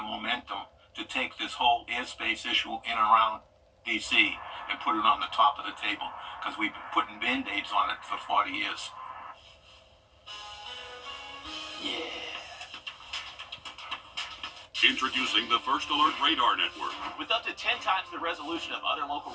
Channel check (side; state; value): both; identical; correlation 1.00